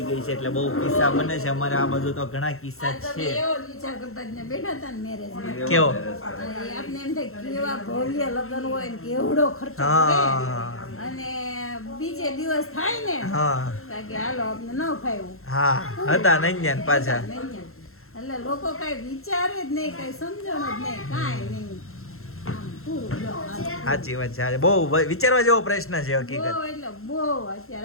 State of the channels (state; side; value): late; right; 0.62 ms